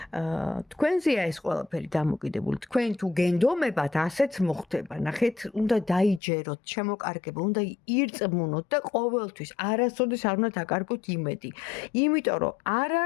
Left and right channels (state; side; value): drops out; right; at 6.2 s